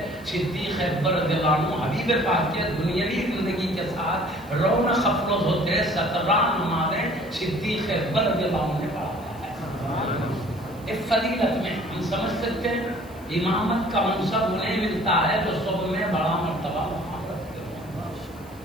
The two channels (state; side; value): noise; right; hiss, 25 dB below the sound